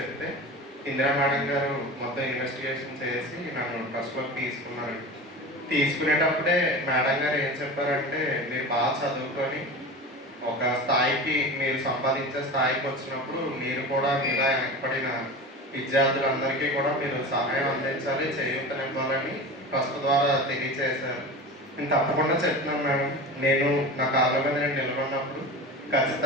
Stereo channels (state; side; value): normal; both; correlation 0.31